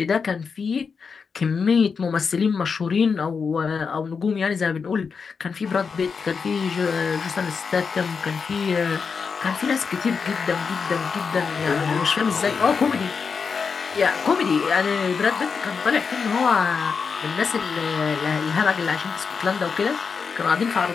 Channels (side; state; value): right; quieter; 5.5 dB